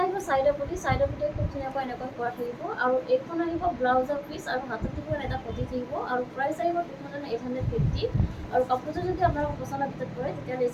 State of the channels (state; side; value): identical; both; correlation 1.00